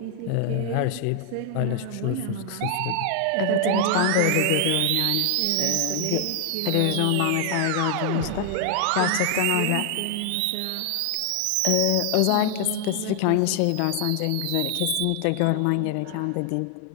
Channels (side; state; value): both; different; correlation 0.00